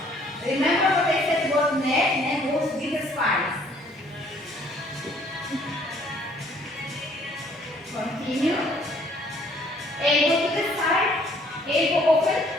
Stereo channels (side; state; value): both; normal; correlation 0.61